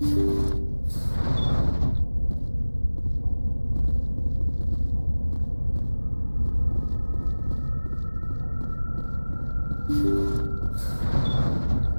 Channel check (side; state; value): both; inverted; correlation -1.00